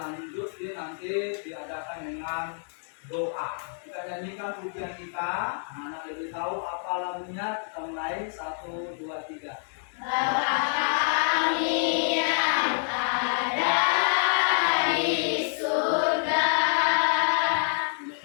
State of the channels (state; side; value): silent; right; digital silence